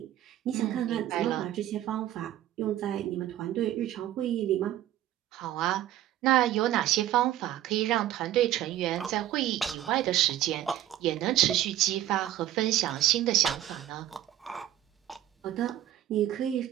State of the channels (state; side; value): quieter; left; 12.7 dB